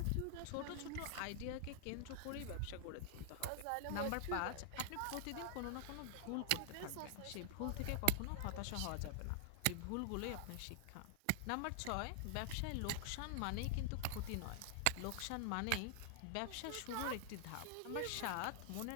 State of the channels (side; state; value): both; different; correlation 0.00